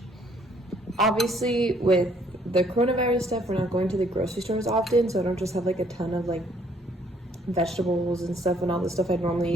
Obviously, with the coronavirus stuff, we're not going to the grocery stores often, so I don't just have like a ton of like vegetables and stuff and all the stuff I'd normally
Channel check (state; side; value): normal; both; correlation 0.64